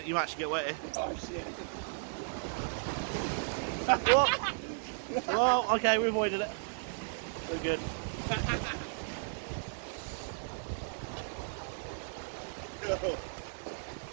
You might actually get wet here. Oh shit. What? Well, okay, we avoided it. We're good.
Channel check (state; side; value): silent; left; digital silence